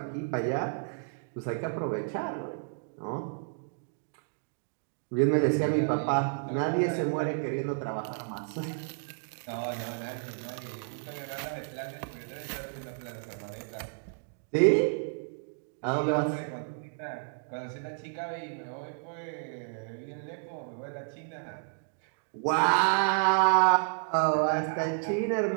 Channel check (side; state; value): left; silent; digital silence